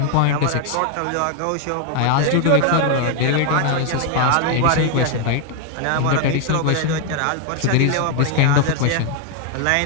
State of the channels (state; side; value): different; both; correlation 0.00